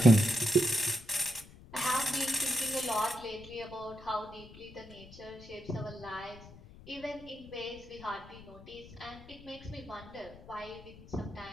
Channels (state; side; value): noise; left; rumble, 19 dB below the sound